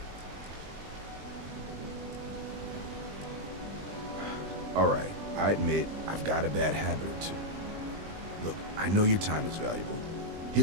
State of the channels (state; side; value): late; left; 20 ms